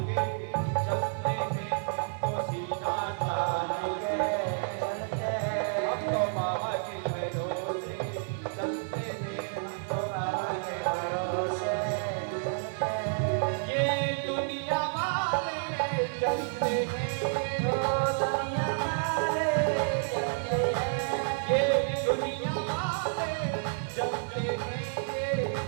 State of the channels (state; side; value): silent; left; digital silence